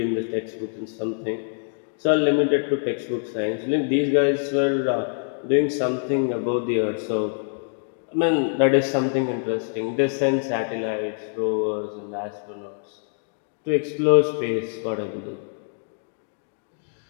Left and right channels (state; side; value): silent; right; digital silence